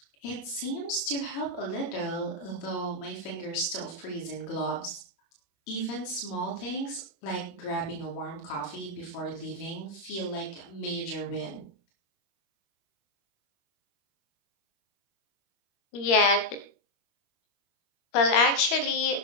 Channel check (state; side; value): late; right; 21 ms